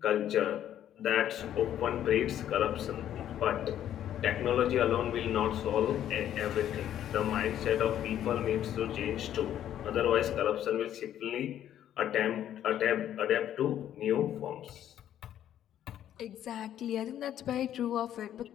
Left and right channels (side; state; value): right; quieter; 11.0 dB